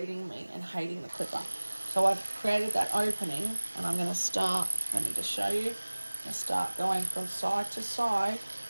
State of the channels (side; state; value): both; inverted; correlation -1.00